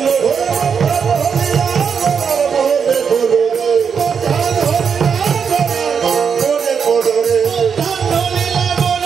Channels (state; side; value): quieter; left; 6.6 dB